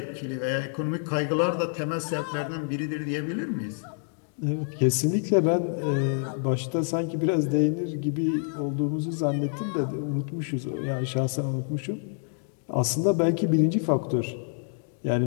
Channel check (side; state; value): right; silent; 60 dB below the other